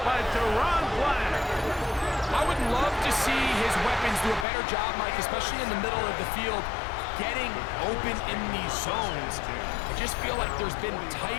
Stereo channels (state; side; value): drops out; right; at 4.5 s